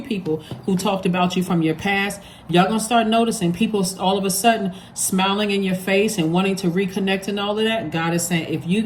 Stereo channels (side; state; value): both; identical; correlation 1.00